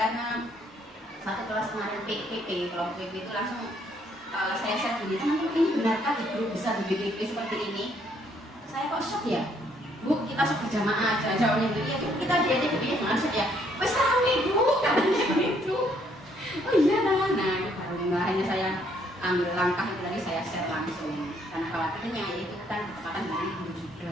satu kelas kemarin PP, kalau PP itu langsung saya share gini, teman-teman ini benarkah di grup bisa di BPP seperti ini? Saya kok shock ya? Bu, kita shock berjamaah aja, jawabnya gitu, ya kita diajak BPP jangan shock ya. Wes rame Bu, katanya begitu. Oh iya nah, itu baru hanya saya ambil langkah itu tadi saya share langsung. Karena khawatirnya itu kan kesempatan dari guru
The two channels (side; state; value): both; normal; correlation 0.68